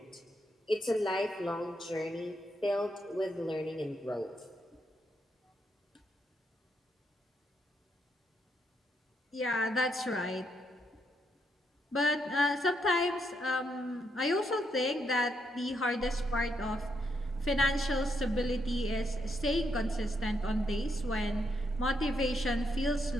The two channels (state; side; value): normal; both; correlation 0.77